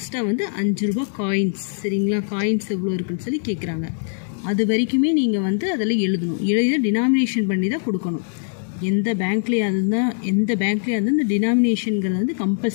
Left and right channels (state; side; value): silent; right; 64 dB below the other